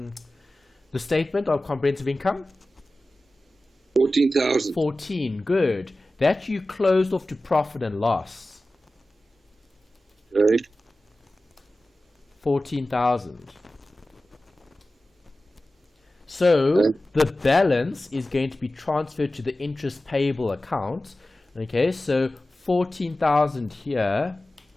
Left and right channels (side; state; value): both; normal; correlation 0.95